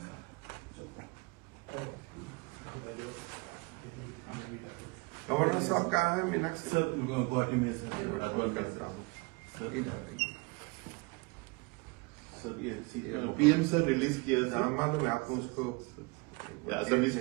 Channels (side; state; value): left; quieter; 28.2 dB